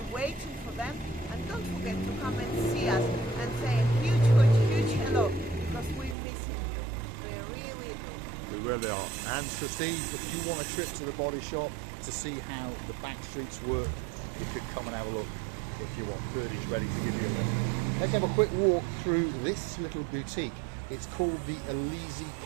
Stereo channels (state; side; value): drops out; left; at 6.2 s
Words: waiting for them. And don't forget to come and see us and say a huge hello, because we're missing you. We really do. We really are. And Sir Steve, if you want a trip to the body shop to see how the back streets work, you could come and have a look if you want. Birdie's ready to give you a look. Let's have a quick walk through this little boutique. It's called the Elise